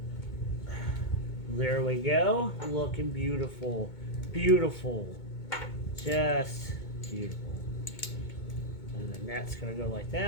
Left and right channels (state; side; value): late; right; 2.2 ms